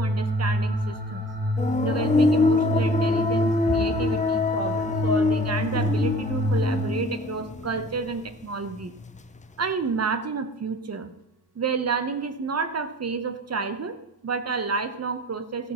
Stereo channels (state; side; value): normal; both; correlation 0.46